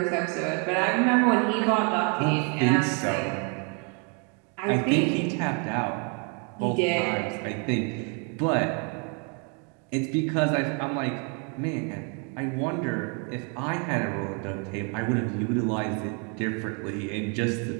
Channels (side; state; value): left; quieter; 36.7 dB